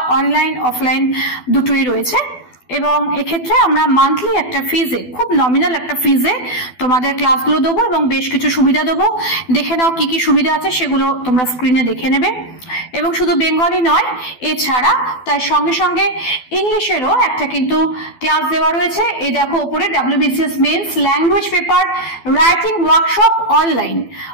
অনলাইন অফলাইন দুটোই রয়েছে, এবং এক্ষেত্রে আমরা মান্থলি একটা ফিজে, খুব নমিনাল একটা ফিজে তোমাদের ক্লাসগুলো দেবো এবং বেশ কিছু সুবিধা দেবো। দেখে নাও কি কি সুবিধা আছে, সেগুলো তোমরা স্ক্রিনে দেখে নেবে। এবং শুধু বেঙ্গলি নয়, এছাড়া তার সঙ্গে সঙ্গে ইংলিশেরও একটা কিন্তু ক্লাস দেওয়া রয়েছে। এই দেখো ওপরে, WBCS men's language paper writing workshop online,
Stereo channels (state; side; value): late; right; 12 ms